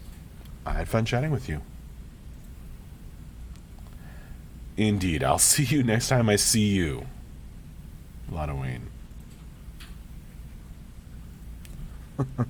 I had fun chatting with you. Indeed, I'll see you next time I see you. Lana Wayne.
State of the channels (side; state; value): both; identical; correlation 1.00